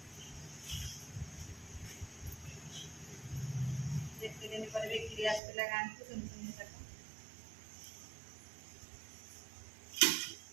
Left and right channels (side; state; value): left; drops out; at 5.4 s